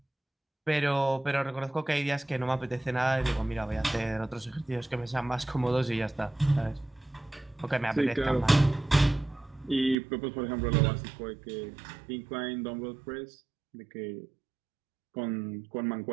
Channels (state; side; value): drops out; left; at 10.0 s